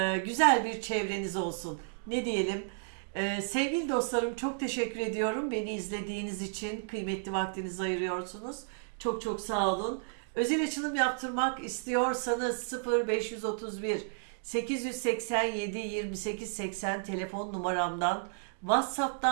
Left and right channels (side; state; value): left; silent; digital silence